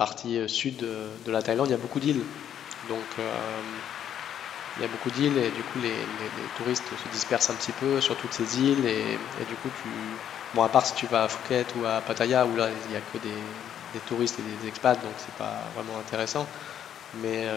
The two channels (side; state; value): right; quieter; 9.8 dB